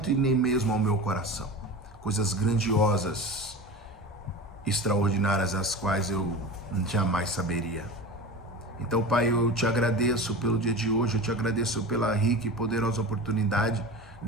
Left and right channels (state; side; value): normal; both; correlation 0.31